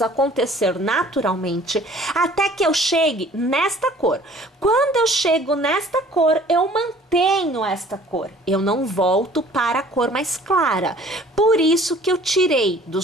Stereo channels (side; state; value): both; normal; correlation 0.52